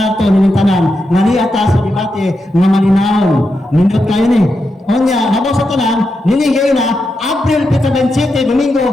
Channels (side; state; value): both; normal; correlation 0.86